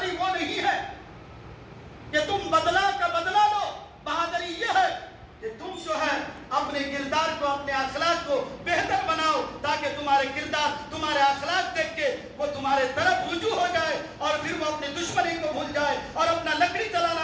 وہ نہیں ہے کہ تم بدلہ کا بدلہ لو، بہادری یہ ہے کہ تم جو ہے اپنے کردار کو، اپنے اخلاق کو بہتر بناؤ، تاکہ تمہارے کردار، تمہارے اخلاق دیکھ کے وہ تمہارے طرف رجوع ہو جائے، اور پھر وہ اپنی دشمنی کو بھول جائے، اور اپنا لکڑی چلانا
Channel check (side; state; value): both; identical; correlation 1.00